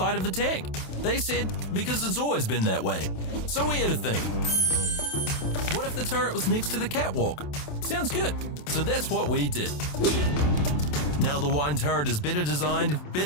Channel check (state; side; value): late; right; 27 ms